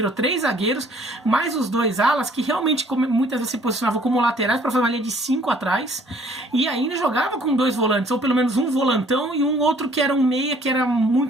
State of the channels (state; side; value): normal; both; correlation 0.58